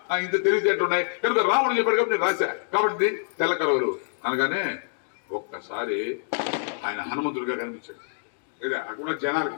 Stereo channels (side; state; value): right; silent; digital silence